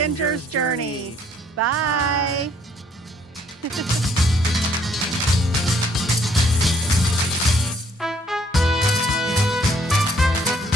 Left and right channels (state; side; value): normal; both; correlation 0.64